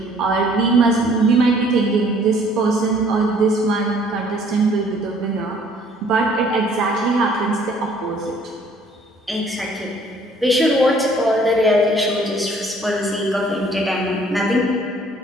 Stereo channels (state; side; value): normal; both; correlation 0.59